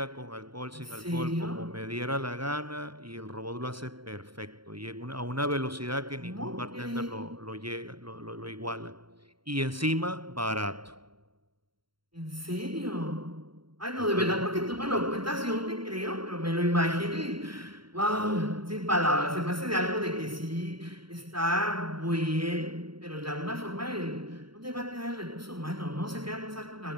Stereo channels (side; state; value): left; late; 0.73 ms